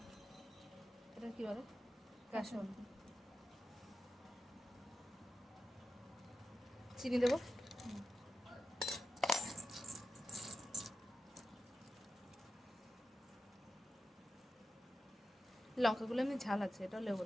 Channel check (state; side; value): normal; both; correlation 0.91